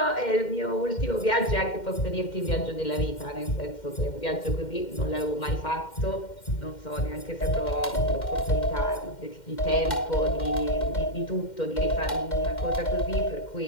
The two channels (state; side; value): late; right; 2.1 ms